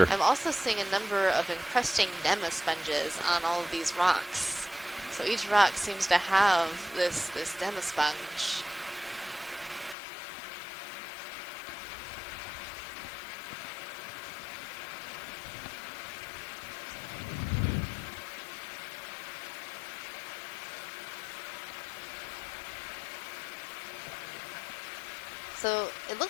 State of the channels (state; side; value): drops out; right; at 10.0 s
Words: I'm also seeing a number of encrusting demasponges on all of these rocks. So each rock seems to have this demasponge. So it